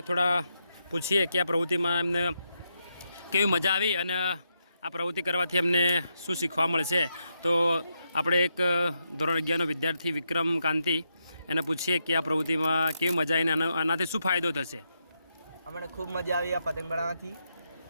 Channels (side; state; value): both; inverted; correlation -0.83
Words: થોડા પૂછીએ કે આ પ્રવૃત્તિમાં એમને કેવી મજા આવી અને આ પ્રવૃત્તિ કરવાથી અમને શું શીખવા મળશે. તો આપણે એક ધોરણ 11નો વિદ્યાર્થી વિક્રમ કાંતિ, એને પૂછીએ કે આ પ્રવૃત્તિમાં કેવી મજા આવીને આનાથી શું ફાયદો થશે. અમને ખૂબ મજા આવી આ પતંગ બનાવવાથી.